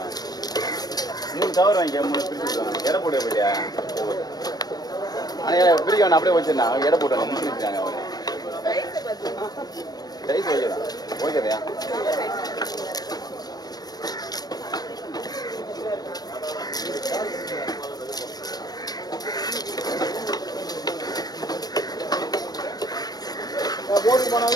3 கவர் வாங்கிக்க 3 பிரிச்சு எடை போட்டு போயிட்டியா ஆனால் பிரிக்க வேணா அப்படியே வச்சிருந்தாங்க எடை போட்டாங்க முடிச்சுருக்காங்க அவங்க ரைஸ் வைக்கலாம் ஓகேதையா போட்டு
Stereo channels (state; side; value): late; right; 0.19 ms